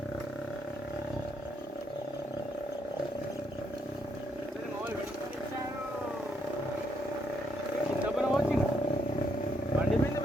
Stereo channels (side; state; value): both; normal; correlation 0.74